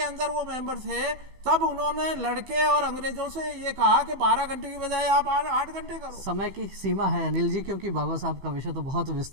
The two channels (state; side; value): late; left; 15 ms